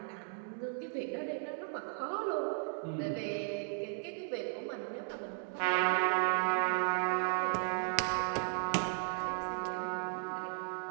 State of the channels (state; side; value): silent; left; 54 dB below the other